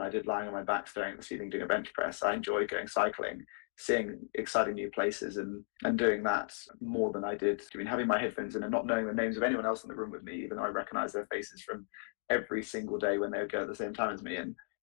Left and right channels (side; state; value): right; silent; 54 dB below the other